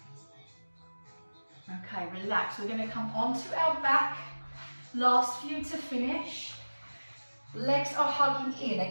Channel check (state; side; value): inverted; both; correlation -1.00